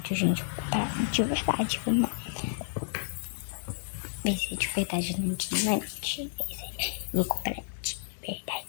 gente. Vou comprar de verdade, vamos lá. Vai ser de verdade, gente, não é mentira. Vou comprar de verdade,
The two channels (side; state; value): right; silent; digital silence